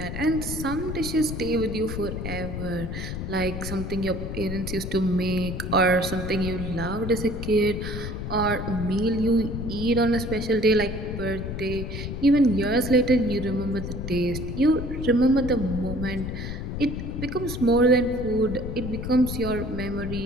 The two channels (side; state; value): left; noise; rumble, 5 dB below the sound